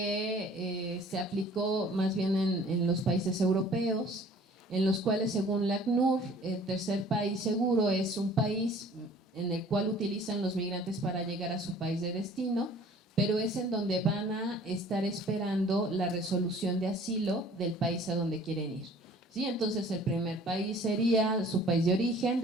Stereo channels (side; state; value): both; normal; correlation 0.51